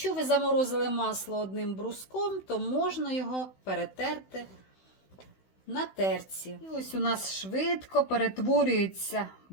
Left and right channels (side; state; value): right; late; 16 ms